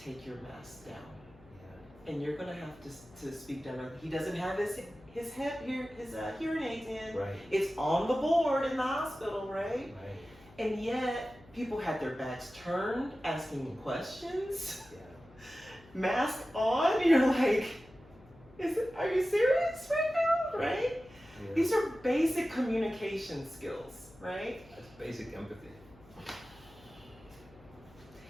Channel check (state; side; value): noise; left; hum, 24 dB below the sound